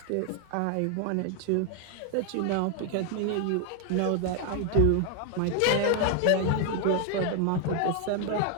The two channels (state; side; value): different; both; correlation 0.00